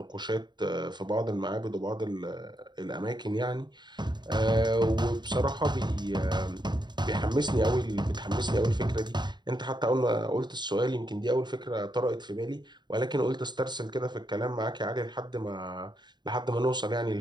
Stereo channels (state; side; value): late; left; 0.21 ms